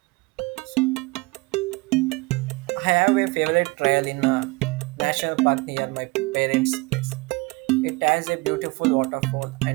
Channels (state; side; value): quieter; left; 24.7 dB